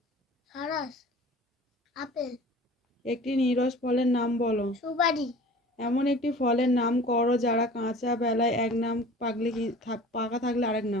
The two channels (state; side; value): normal; both; correlation 0.43